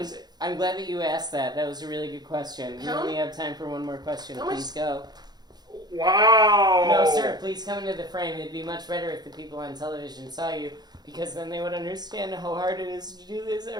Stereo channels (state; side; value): late; left; 0.20 ms